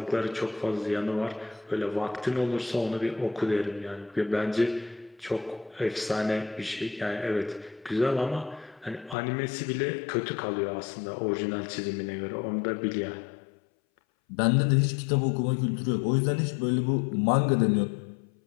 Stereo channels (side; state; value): right; drops out; at 9.2 s